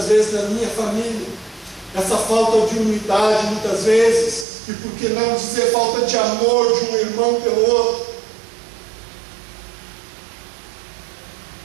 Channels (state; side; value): drops out; left; at 4.5 s